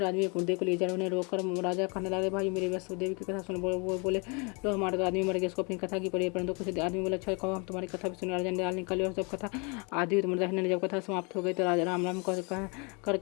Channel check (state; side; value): quieter; right; 32.4 dB